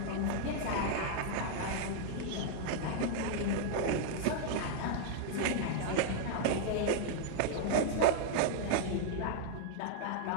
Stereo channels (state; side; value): different; both; correlation -0.01